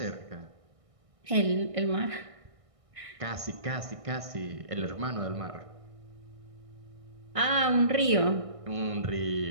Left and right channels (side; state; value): left; late; 1.6 ms